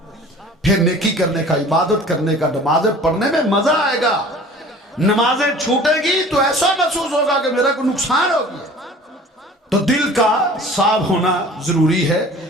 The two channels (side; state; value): both; normal; correlation 0.45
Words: फिर नेकी करने का, इबादत करने का, नमाजें पढ़ने में मजा आएगा। नमाजें छूटेगी तो ऐसा महसूस होगा कि मेरा कोई नुकसान हो गया। तो दिल का साफ होना जरूरी है।